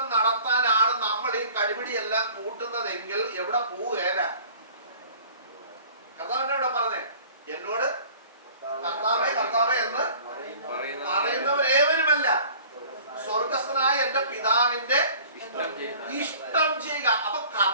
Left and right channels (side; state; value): both; inverted; correlation -0.47